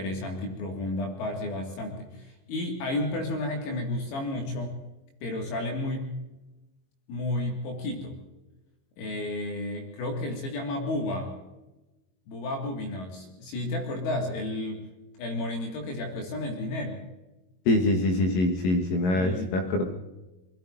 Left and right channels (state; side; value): late; right; 22 ms